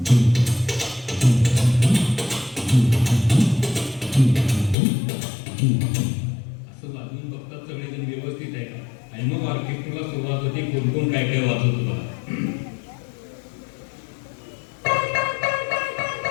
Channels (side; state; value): right; drops out; at 4.8 s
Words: वाजवून बघतात सगळेजण व्यवस्थित आहे का, आणि मग ऑर्केस्ट्राला सुरुवात होते, कोण कोण काय काय वाजवतो बघा.